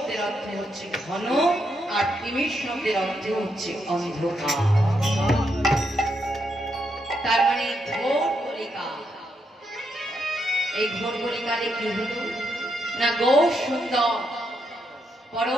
অর্থ হচ্ছে ঘন, আর তিমির শব্দের অর্থ হচ্ছে অন্ধকার। তার মানে ঘোর কলিকা। এই ঘোর কলিকালে কি হলো না, গৌর সুন্দর,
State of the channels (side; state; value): both; normal; correlation 0.80